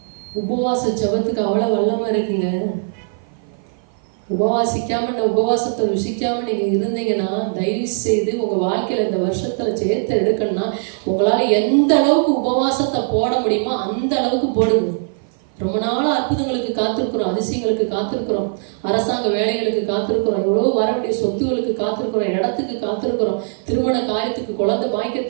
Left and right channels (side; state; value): left; silent; 55 dB below the other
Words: உபவாச ஜெபத்துக்கு அவ்வளவு வல்லமா இருக்குங்க. உபவாசிக்காம, இந்த உபவாசத்தை ருசிக்காம நீங்க இருந்தீங்கன்னா, தயவு செய்து உங்க வாழ்க்கையில இந்த வருஷத்துல ஜெயத்தை எடுக்கணும்னா, உங்களால எந்த அளவுக்கு உபவாசத்தை போட முடியுமோ அந்த அளவுக்கு போடுங்க. ரொம்ப நாள் அற்புதங்களுக்கு காத்திருக்கிறோம், அதிசயங்களுக்கு காத்திருக்கிறோம், அரசாங்க வேலைகளுக்கு காத்திருக்கிறோம், எவ்வளோ வர வேண்டிய சொத்துகளுக்கு காத்திருக்கிறோம், இடத்துக்கு காத்திருக்கிறோம், திருமண காரியத்துக்கு, குழந்தை